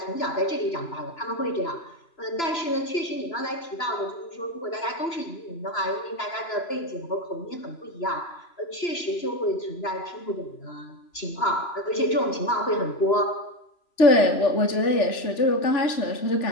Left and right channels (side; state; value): right; late; 3.0 ms